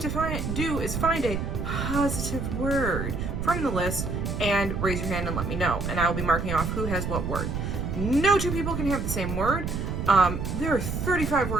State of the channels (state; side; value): noise; right; rumble, 3 dB below the sound